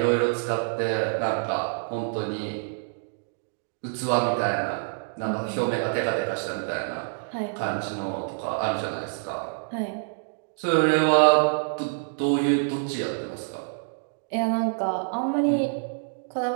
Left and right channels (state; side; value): silent; left; digital silence